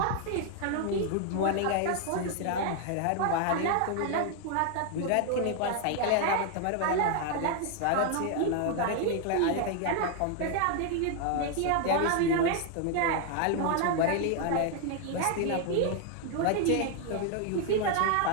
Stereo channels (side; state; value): both; different; correlation 0.00